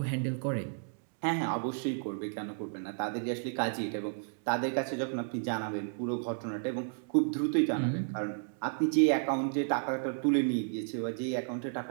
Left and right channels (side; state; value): left; silent; digital silence